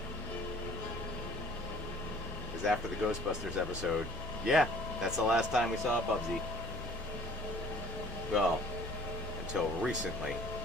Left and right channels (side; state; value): both; normal; correlation 0.52